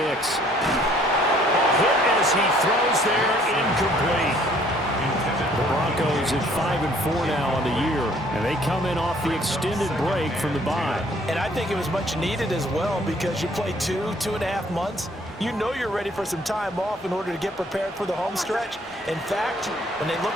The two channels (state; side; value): normal; both; correlation 0.60